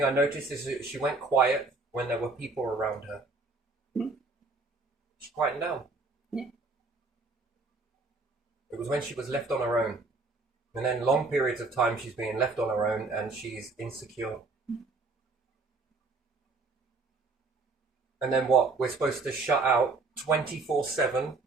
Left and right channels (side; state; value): left; quieter; 3.6 dB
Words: I noticed is that she went quiet when there were people around her. She quieted down. Yeah. It was when she was left on her own. And then long periods of time she's being left on her own and she's insecure. And then what? We're supposed to shut out 24/7,